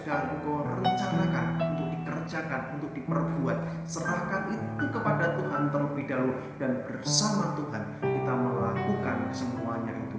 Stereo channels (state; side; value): identical; both; correlation 1.00